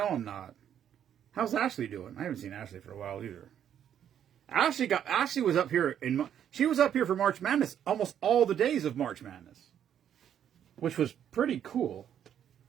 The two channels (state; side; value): quieter; left; 9.5 dB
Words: I'm not. How's Ashley doing? I haven't seen Ashley for a while either. Ashley was up here she was up here for March Madness almost all the days of March Madness, which was pretty cool.